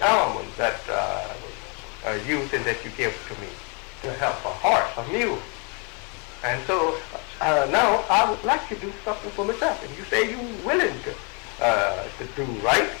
element that used and that you give to me to help a horse, a mule. And so now I would like to do something for myself. And you say you're willing to do right,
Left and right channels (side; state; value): right; quieter; 34.4 dB